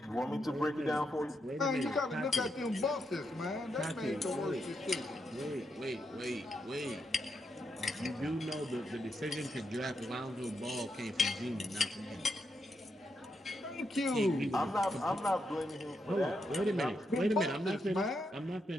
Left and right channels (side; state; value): both; normal; correlation 0.82